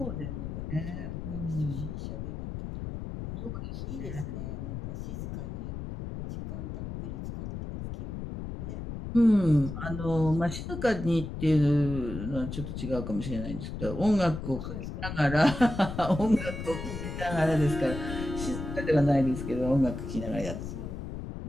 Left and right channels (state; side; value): noise; left; rumble, 7 dB below the sound